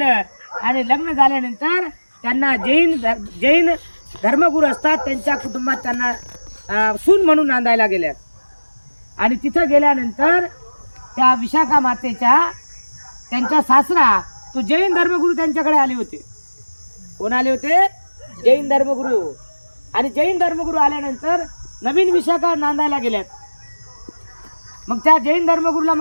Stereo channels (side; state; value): both; inverted; correlation -1.00